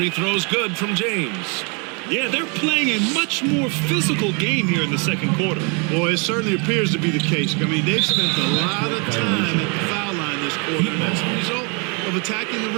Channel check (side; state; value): left; quieter; 33.6 dB